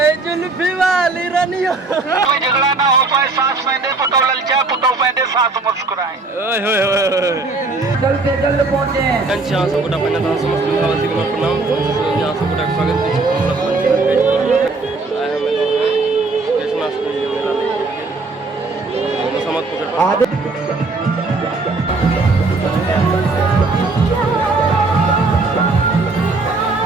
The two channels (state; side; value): quieter; left; 3.6 dB